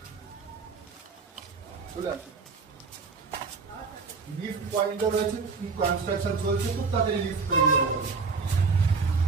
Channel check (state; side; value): quieter; left; 4.7 dB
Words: চলে আসো। লিফট পয়েন্টও রয়েছে, কনস্ট্রাকশন চলছে, খুব তাড়াতাড়ি লিফট তৈরি হয়ে যাবে।